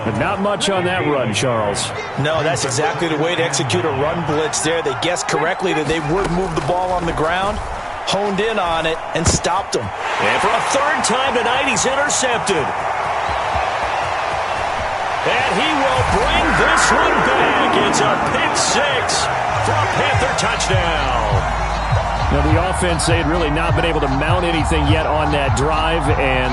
But not much on that run, Charles. No, that's exactly the way to execute a run blitz there. They guessed correctly that they would move the ball on the ground, honed in on it, and stopped them. And for a 3rd time tonight, he's intercepted. And he will bring this one back. It's a pick 6 for a Panther touchdown. Now, the offense, they had really not been able to mount anything yet on that drive,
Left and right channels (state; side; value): identical; both; correlation 1.00